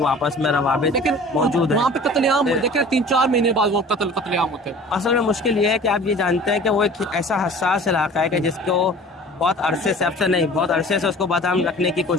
آپس میں روابط موجود ہیں. وہاں پہ قتل عام ہوتے ہیں، 3-4 مہینے بعد وہ قتل عام ہوتے ہیں. اصل میں مشکل یہ ہے کہ آپ یہ جانتے ہیں کہ وہ ایک ایسا حساس علاقہ ہے کہ جس کو بہت عرصے سے، اب سے نہیں، بہت عرصے سے اس کو بدام رکھنے کی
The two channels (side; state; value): both; normal; correlation 0.44